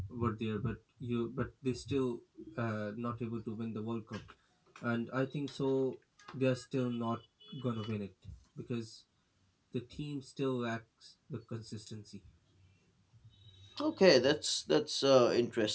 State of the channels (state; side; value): identical; both; correlation 1.00